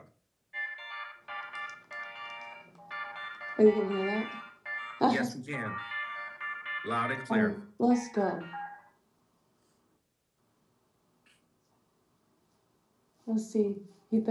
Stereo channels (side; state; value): both; identical; correlation 1.00